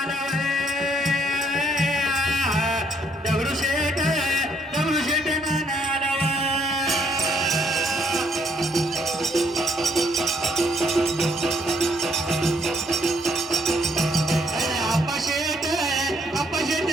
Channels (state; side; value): normal; both; correlation 0.69